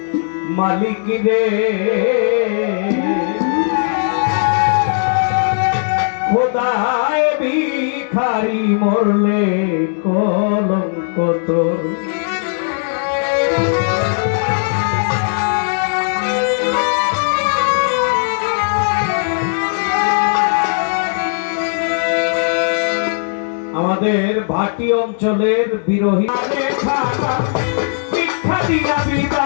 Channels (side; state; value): right; silent; 65 dB below the other